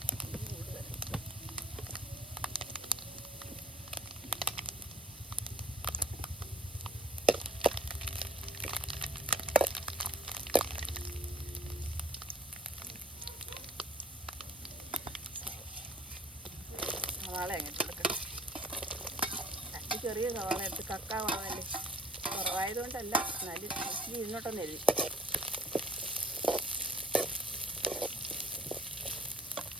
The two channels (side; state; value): both; normal; correlation 0.54